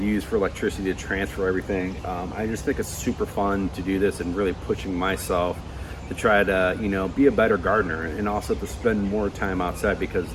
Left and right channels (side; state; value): both; identical; correlation 1.00